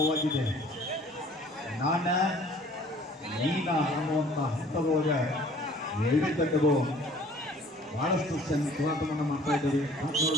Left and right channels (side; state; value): both; normal; correlation 0.52